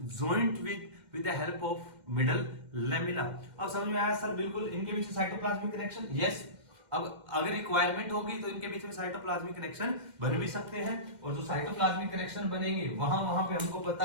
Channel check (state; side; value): late; left; 2.1 ms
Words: with the help of middle lamella. अब समझ में आया सर, बिल्कुल इनके बीच में साइटोप्लाज्मिक कनेक्शन, यस। अब अगर रिक्वायरमेंट होगी तो इनके बीच में साइटोप्लाज्मिक कनेक्शन बन भी सकते हैं, और जो साइटोप्लाज्मिक कनेक्शन बनेंगे वहां पे हमको